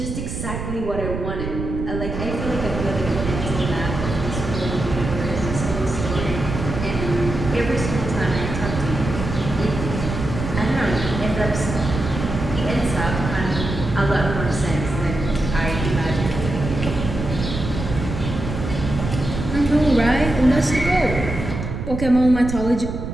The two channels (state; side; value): noise; right; rumble, 5 dB below the sound